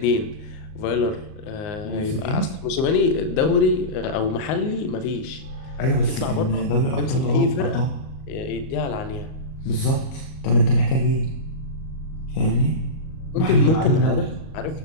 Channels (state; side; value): late; right; 38 ms